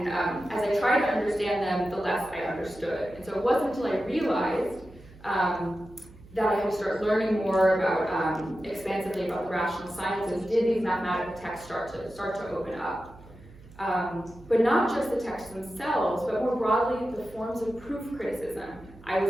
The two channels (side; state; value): right; noise; hum, 21 dB below the sound